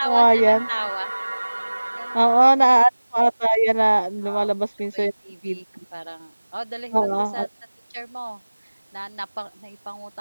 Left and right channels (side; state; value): both; inverted; correlation -1.00